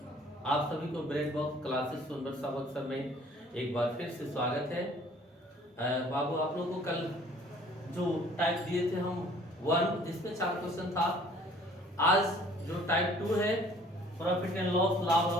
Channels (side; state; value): both; normal; correlation 0.54